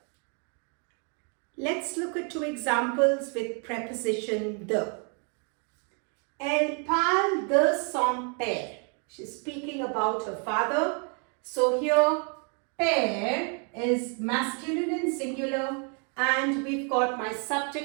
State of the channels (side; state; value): left; quieter; 38.8 dB